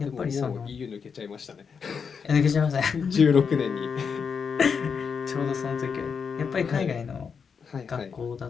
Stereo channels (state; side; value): quieter; right; 6.2 dB